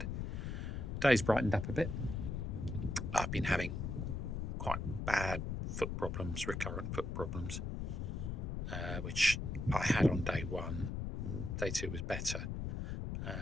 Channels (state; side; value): noise; left; rumble, 3 dB below the sound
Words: The day's brightened up a bit. I've been having quite bad foot problems, recurrent foot problems, which I had on day one. Day two was better,